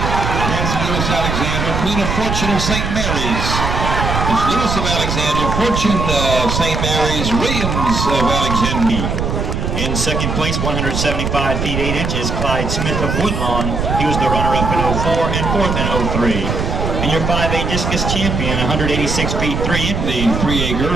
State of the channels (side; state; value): right; noise; rumble, 2 dB below the sound